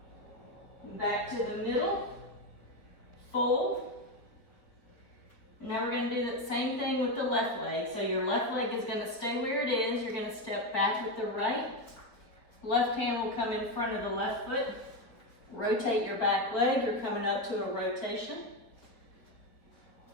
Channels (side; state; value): right; late; 4.3 ms